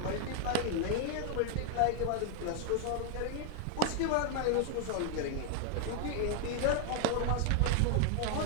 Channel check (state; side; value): different; both; correlation 0.00